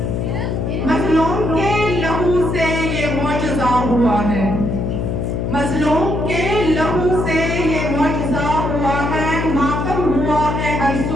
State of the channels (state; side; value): noise; left; hum, 1 dB below the sound